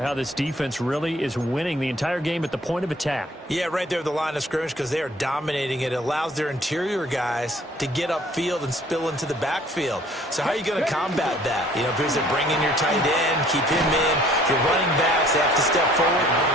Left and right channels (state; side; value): normal; both; correlation 0.56